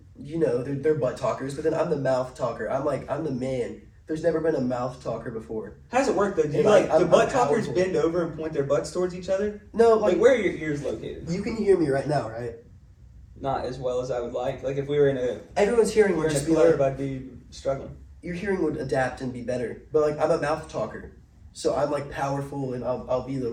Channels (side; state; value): both; identical; correlation 1.00